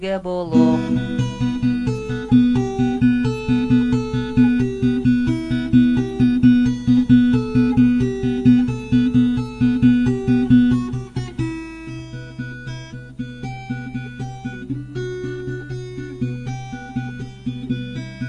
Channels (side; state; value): both; identical; correlation 1.00